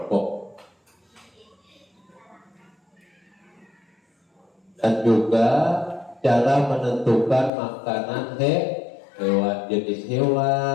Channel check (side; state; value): right; drops out; at 7.5 s